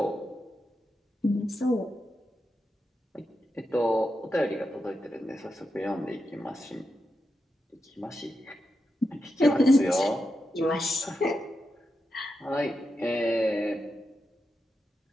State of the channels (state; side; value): normal; both; correlation 0.87